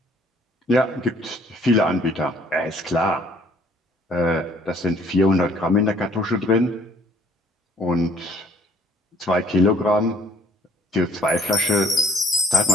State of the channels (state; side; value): normal; both; correlation 0.61